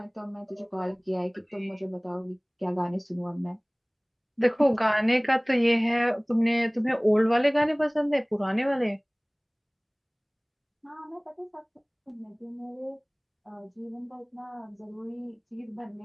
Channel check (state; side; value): identical; both; correlation 1.00